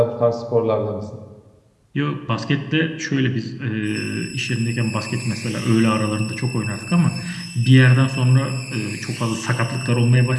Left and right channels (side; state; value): both; identical; correlation 1.00